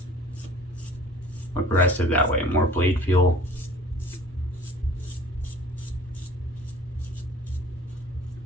aggressive that way, more blade feel.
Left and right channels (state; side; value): normal; both; correlation 0.48